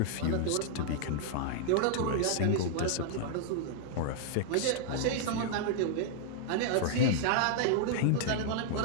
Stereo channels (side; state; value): both; different; correlation -0.01